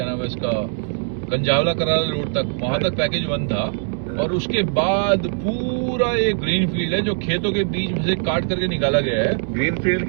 नाम है इसका, कंजावला कराला रोड तक, वहां तक पैकेज वन था और उसके बाद पूरा ये ग्रीन फील्ड है जो खेतों के बीच में से काट करके निकाला गया है। ग्रीन फील्ड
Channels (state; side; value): silent; left; 65 dB below the other